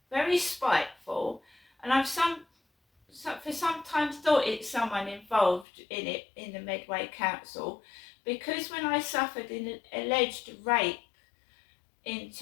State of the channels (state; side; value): drops out; right; at 5.7 s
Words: very spiteful, and I've for sometimes thought it's someone involved in it, in the Medway Council, because when I suffered an alleged rape in